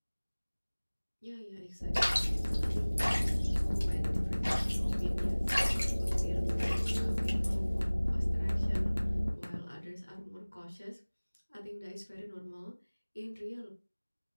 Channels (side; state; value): both; inverted; correlation -1.00